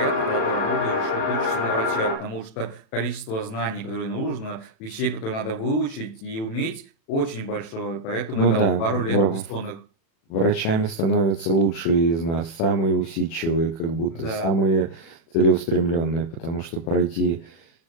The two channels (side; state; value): right; late; 36 ms